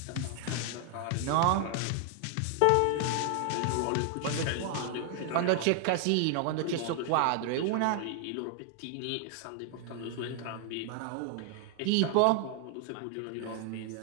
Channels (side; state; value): both; different; correlation 0.00